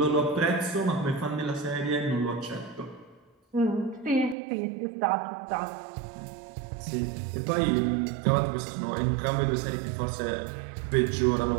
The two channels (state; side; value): drops out; left; at 4.4 s